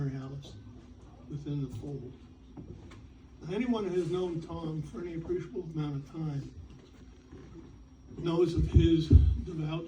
Alice within the fold. Now, anyone who has known Tom for any appreciable amount of time knows of his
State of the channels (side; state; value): both; identical; correlation 1.00